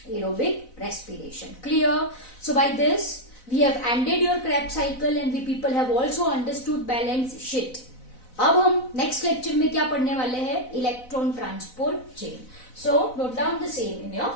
aerobic respiration. Clear? So by this we have ended your Krebs cycle and we people have also understood balance sheet. अब हम next lecture में क्या पढ़ने वाले हैं? Electron transport chain. So note down the same in your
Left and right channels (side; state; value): right; late; 4.0 ms